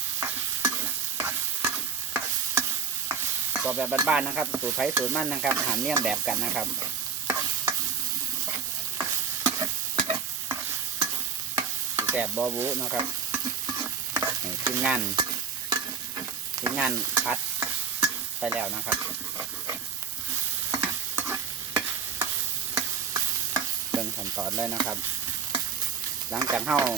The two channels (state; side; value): quieter; left; 6.1 dB